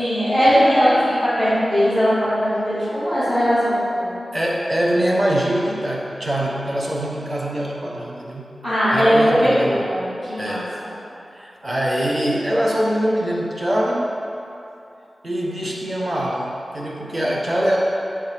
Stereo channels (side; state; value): both; normal; correlation 0.95